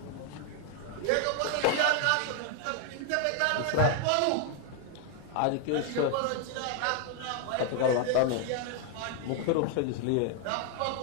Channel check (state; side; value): different; both; correlation 0.00